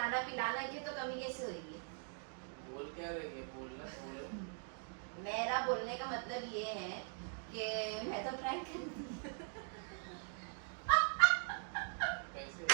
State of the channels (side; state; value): left; silent; 50 dB below the other